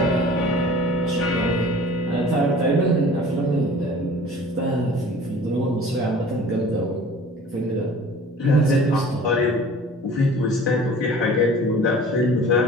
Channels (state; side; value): normal; both; correlation 0.46